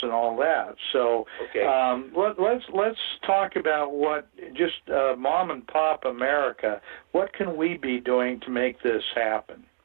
and all that. So let's talk about what just mom and pop America. What can we be doing to make this happen?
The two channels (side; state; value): left; silent; digital silence